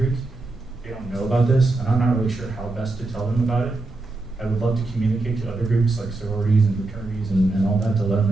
they don't know about this, and I'm not really sure how best to tell them about it. I would love to communicate to other groups like sororities and fraternities and all that to let them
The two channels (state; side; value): quieter; left; 3.1 dB